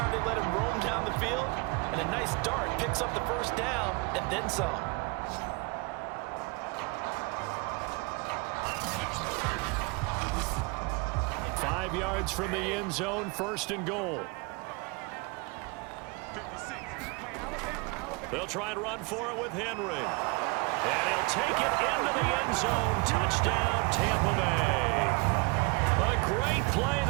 they let him roam down the field, and a nice dart picks up the first down and then some. Five yards from the end zone, 1st and goal. They'll try and run for it with Henry. And he'll take it into the end zone. Touchdown, Tampa Bay. A great play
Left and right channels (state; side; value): quieter; left; 28.0 dB